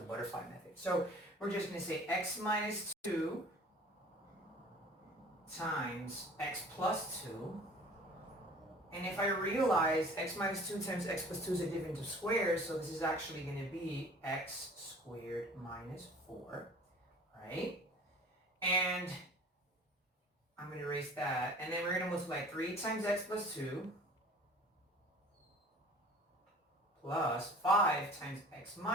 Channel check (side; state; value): both; normal; correlation 0.47